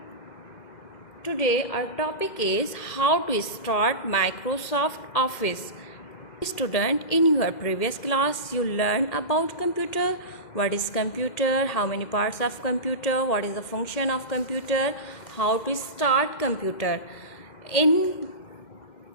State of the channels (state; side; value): late; right; 2.0 ms